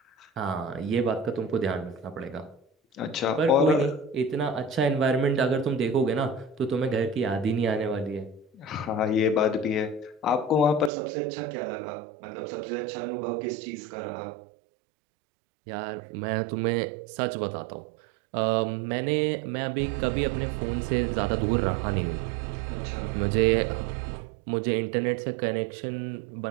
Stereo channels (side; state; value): left; drops out; at 10.9 s